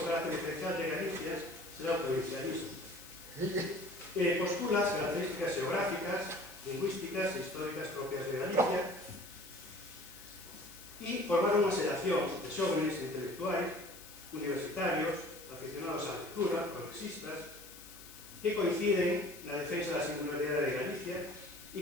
o carácter diferencial de Galicia será o provincialismo. Postula as características geográficas, lingüísticas e históricas propias de Galicia e formar unha xeración de xóvenes intelectuais, universitarios, aficionados á lectura, progresistas, que coinciden na defensa da singularidade de Galicia e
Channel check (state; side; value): noise; left; hiss, 16 dB below the sound